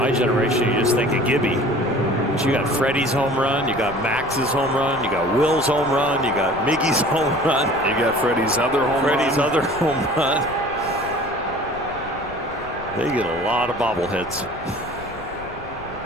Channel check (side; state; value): left; noise; rumble, 17 dB below the sound